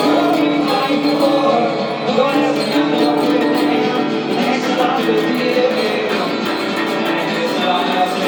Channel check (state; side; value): identical; both; correlation 1.00